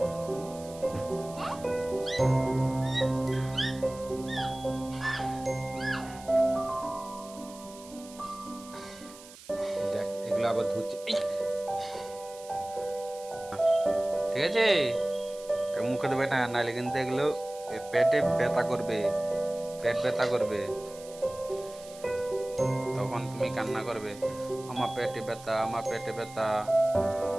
দেখ এগুলো আবার ধুচ্ছে, ঠিক আছে? মুখে দেবে না, নাহলে কিন্তু এগুলো পেটে ব্যথা করবে, পেট ব্যথা করবে, তখন তুমি কান্না করবে, আমার পেটে ব্যথা, আমার পেটে ব্যথা।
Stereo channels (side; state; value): right; noise; hiss, 19 dB below the sound